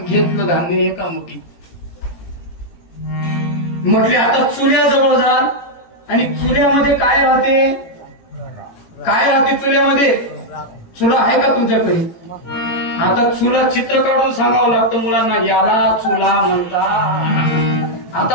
धान्य एका मुठी. म्हटले आता चुल्याजवळ जा आणि चुल्यामध्ये काय राहते? काय राहते चुल्यामध्ये? चुला आहे का तुमच्याकडे? आता चुला चित्र काढून सांगावं लागतं मुलांना, याला चुला म्हणतात.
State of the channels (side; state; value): right; late; 18 ms